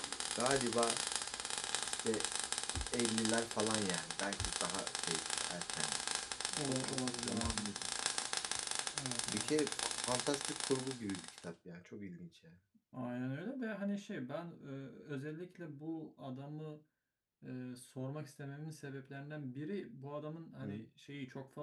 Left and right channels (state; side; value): identical; both; correlation 1.00